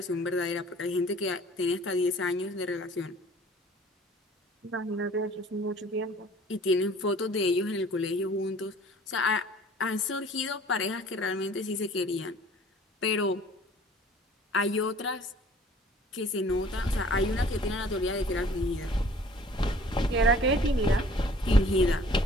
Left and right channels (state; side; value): normal; both; correlation 0.51